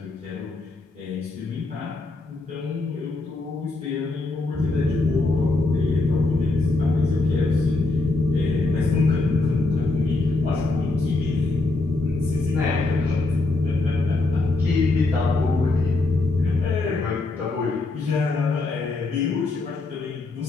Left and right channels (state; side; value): quieter; right; 3.3 dB